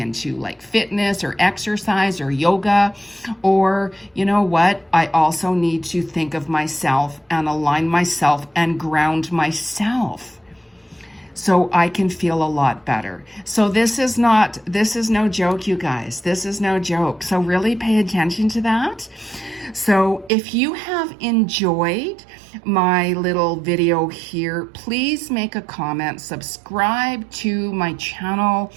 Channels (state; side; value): drops out; left; at 20.3 s